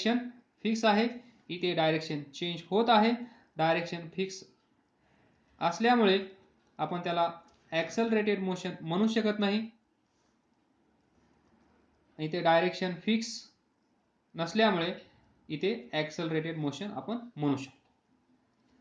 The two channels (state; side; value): identical; both; correlation 1.00